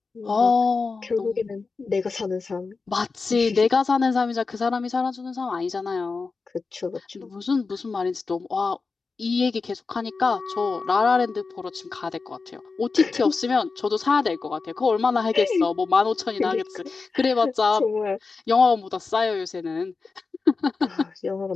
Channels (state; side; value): quieter; right; 4.4 dB